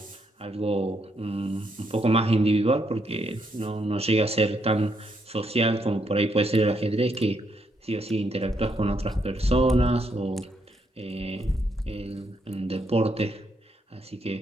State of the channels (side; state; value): both; normal; correlation 0.76